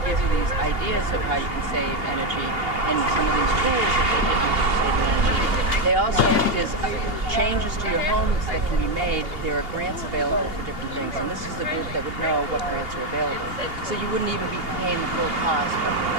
give you these ideas of how you can save energy and some of these tools that they give you for saving energy. They also, if there's changes to your homes that can be made, there are grants available for different things, and this is the group that would know what grants are available. So you wouldn't even be paying the full cost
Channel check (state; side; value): late; left; 2.8 ms